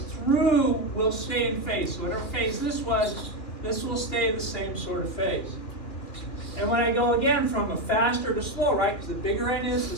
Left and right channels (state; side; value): late; right; 2.9 ms